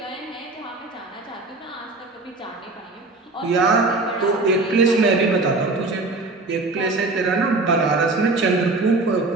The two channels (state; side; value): quieter; left; 3.3 dB